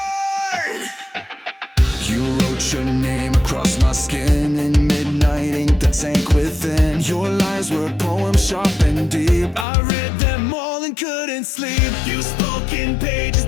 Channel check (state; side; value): drops out; right; at 9.7 s